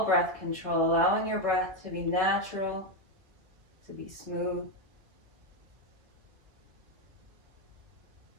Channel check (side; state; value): left; late; 1.8 ms